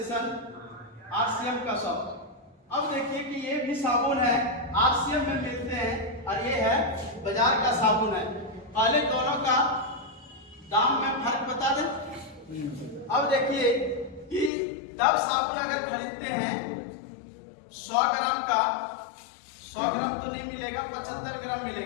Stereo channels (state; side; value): drops out; right; at 14.5 s